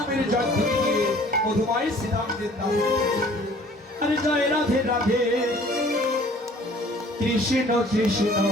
জয় ধরে গিয়ে মধুময় শ্রীরামদের নাম। আরে জয় রাধে রাধে কৃষ্ণ কৃষ্ণ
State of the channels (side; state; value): both; normal; correlation 0.53